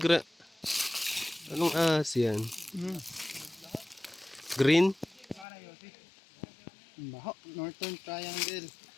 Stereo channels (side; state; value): right; drops out; at 5.5 s